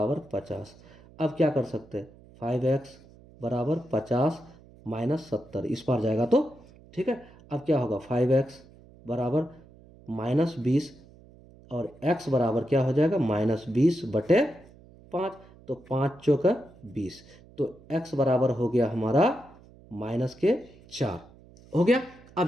50। अब क्या कर सकते हैं, 5x बराबर 50 माइनस 70, इस पार जाएगा तो ठीक है। अब क्या होगा, 5x बराबर माइनस 20 और x बराबर क्या हो जाएगा, माइनस 20/5, तो 5 चौका 20, तो x बराबर हो गया हमारा -4 हो गया।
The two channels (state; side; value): noise; right; hum, 24 dB below the sound